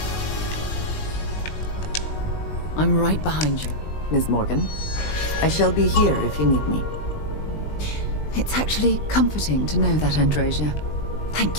I'm right behind you. Ms. Morgan, I shall be here if you need me. It's actually comforting to know that, Andresia.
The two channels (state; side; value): late; right; 20 ms